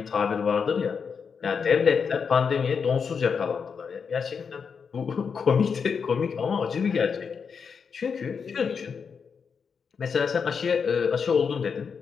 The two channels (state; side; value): quieter; right; 6.1 dB